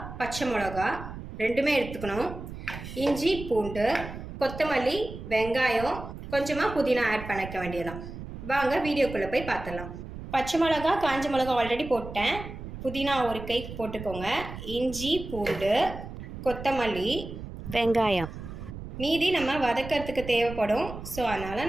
பச்சை மிளகா ரெண்டுமே எடுத்துக்கணும். இஞ்சி, பூண்டு, கொத்தமல்லி, வெங்காயம், கொஞ்சமாக புதினா ஆட் பண்ணிக்க வேண்டியதான். வாங்க வீடியோக்குள்ளே போய் பார்த்துடலாம். பச்சை மிளகா, காஞ்சி மிளகா ஆல்ரெடி போட்டேன். புதினா ஒரு கை போட்டுக்கோங்க. இஞ்சி, பூண்டு, கொத்தமல்லி, வெங்காயம் மீதி நம்ம வதக்கிறதுக்கு தேவைப்படும். ஸோ அதனால்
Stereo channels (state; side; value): noise; right; rumble, 10 dB below the sound